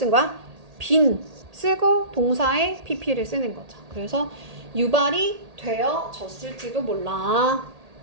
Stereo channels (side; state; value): left; late; 1.8 ms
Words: 거야? been 쓰고 동사의 pp를 쓰는 거죠. 그래서 유발이 되어졌을지도 몰라.